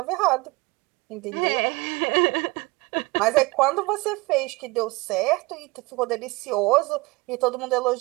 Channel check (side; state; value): left; quieter; 24.5 dB